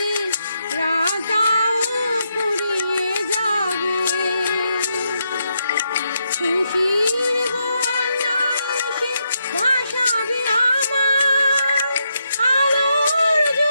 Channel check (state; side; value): inverted; both; correlation -0.81